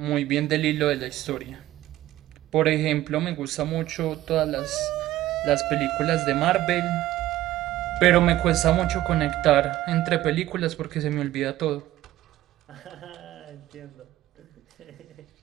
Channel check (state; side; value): quieter; left; 14.9 dB